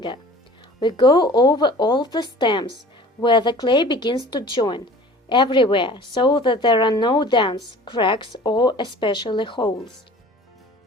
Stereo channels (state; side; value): normal; both; correlation 0.45